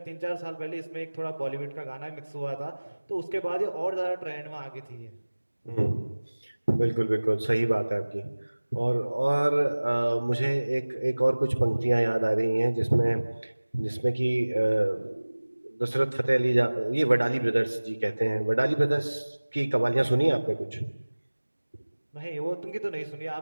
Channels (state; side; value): inverted; both; correlation -1.00